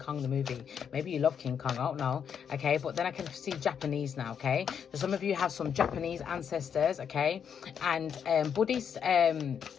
the movie, maybe you love King Kong, I don't know. Okay, but then I can see Japanese now. Okay, so some of you have some Japanese ancestors. Okay, and Buddhist.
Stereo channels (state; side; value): quieter; right; 7.6 dB